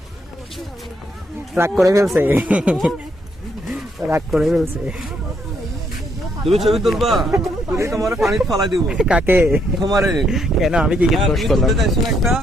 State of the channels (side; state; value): both; normal; correlation 0.73